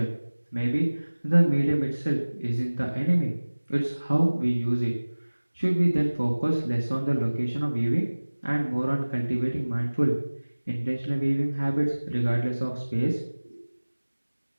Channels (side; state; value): both; inverted; correlation -1.00